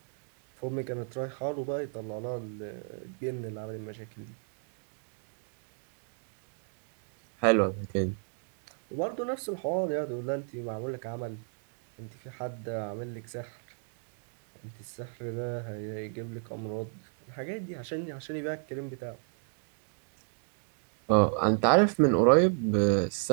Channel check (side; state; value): left; silent; 56 dB below the other